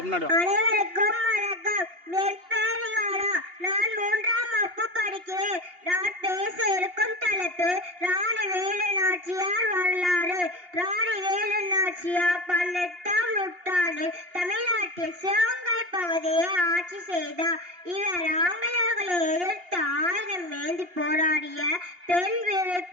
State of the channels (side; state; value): left; late; 2.8 ms